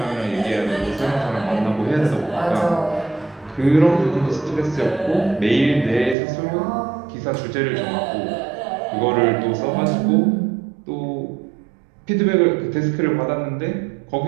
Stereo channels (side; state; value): left; drops out; at 6.2 s